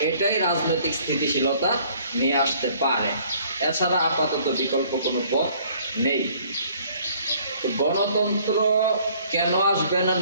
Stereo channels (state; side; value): inverted; both; correlation -0.58